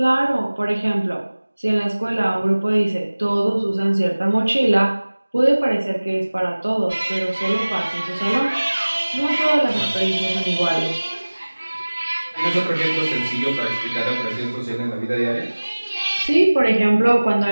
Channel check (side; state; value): both; inverted; correlation -1.00